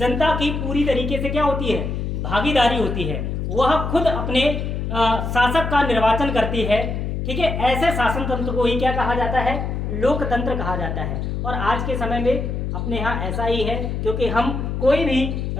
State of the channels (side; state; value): left; noise; hum, 3 dB below the sound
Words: की पूरी तरीके से क्या होती है? भागीदारी होती है, वह खुद अपने शासक का निर्वाचन करती है, ठीक है, ऐसे शासन तंत्र को ही क्या कहा जाता है? लोकतंत्र कहा जाता है। और आज के समय में अपने यहाँ ऐसा ही है, क्योंकि हम कोई भी